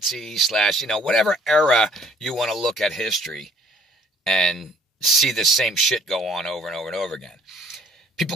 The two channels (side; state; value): both; normal; correlation 0.58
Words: / whatever era you want to look at history and see the same shit go on over and over and over again.